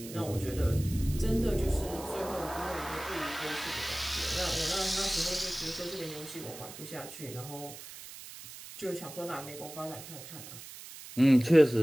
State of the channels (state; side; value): noise; right; hiss, 14 dB below the sound